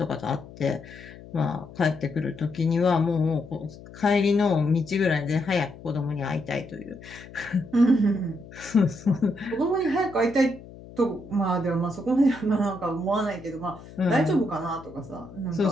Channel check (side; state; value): left; noise; hum, 18 dB below the sound